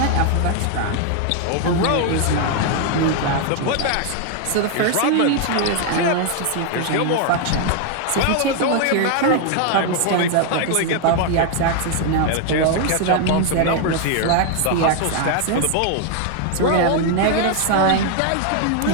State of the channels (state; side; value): different; both; correlation 0.01